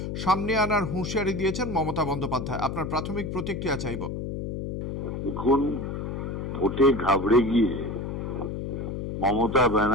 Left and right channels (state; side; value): noise; left; hum, 5 dB below the sound